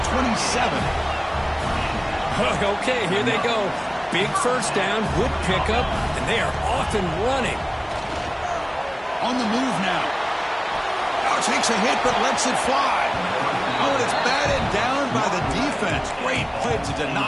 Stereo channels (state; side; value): identical; both; correlation 1.00